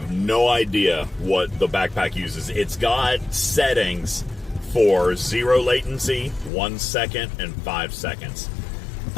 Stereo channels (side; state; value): right; drops out; at 6.5 s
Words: no idea what the backpack uses. It's got settings for 0 latency, 1 second, and 5 seconds.